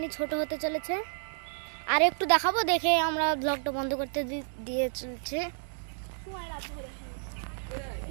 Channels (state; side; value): silent; left; 57 dB below the other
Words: ছোট হতে চলেছে, আর একটু দেখাবো, দেখে আমরা ব্লগটা বন্ধ করতে দিয়ে চলছে।